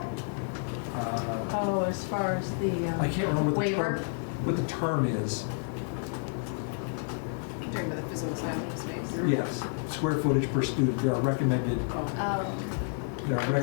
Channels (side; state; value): right; silent; 58 dB below the other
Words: Oh, as far as the I can't remember waiver? what the term is. You're talking about the physical size of the space? Yes, square footage per student. There are recommended. There are